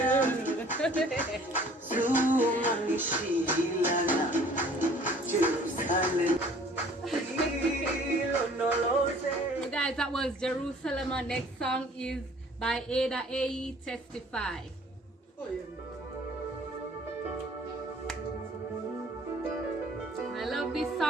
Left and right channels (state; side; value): normal; both; correlation 0.53